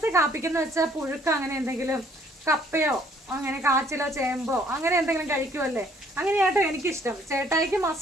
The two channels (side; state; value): both; normal; correlation 0.62